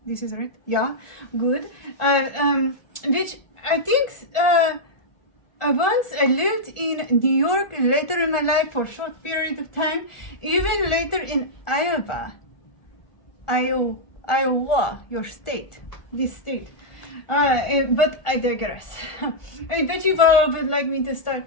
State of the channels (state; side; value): late; right; 1.4 ms